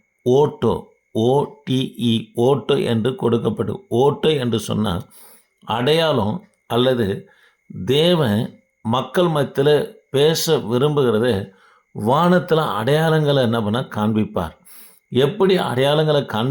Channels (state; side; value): identical; both; correlation 1.00